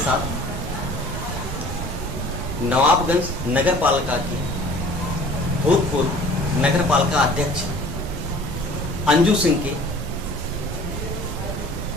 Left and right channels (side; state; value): both; normal; correlation 0.48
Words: नवाबगंज नगर पालिका के भूतपूर्व नगर पालिका अध्यक्ष अंजू सिंह के